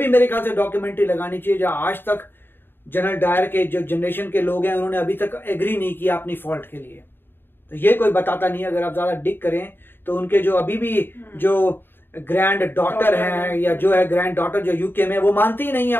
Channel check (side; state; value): right; late; 0.10 ms